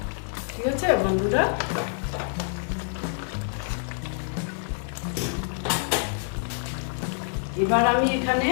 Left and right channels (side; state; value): right; silent; digital silence